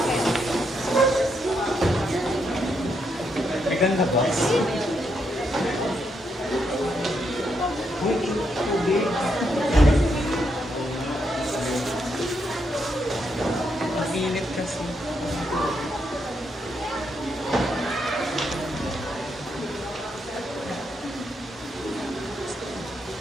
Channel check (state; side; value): normal; both; correlation 0.79